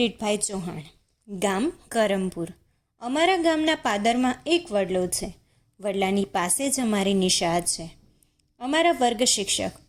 ચૌહાણ, ગામ કરમપુર. અમારા ગામના પાદરમાં એક વડલો છે. વડલાની પાસે જ અમારી નિશાળ છે. અમારા વર્ગ શિક્ષક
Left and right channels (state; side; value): identical; both; correlation 1.00